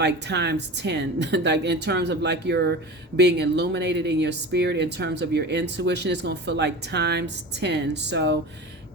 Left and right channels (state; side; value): normal; both; correlation 0.32